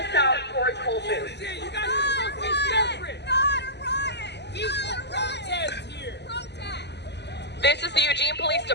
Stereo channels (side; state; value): right; late; 0.50 ms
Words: south towards Whole Foods. This is the Eugene Police